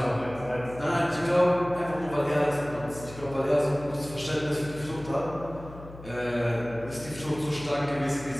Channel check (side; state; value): left; noise; hum, 16 dB below the sound